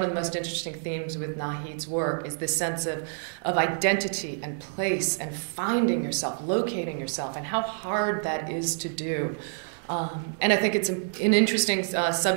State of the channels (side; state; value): left; silent; digital silence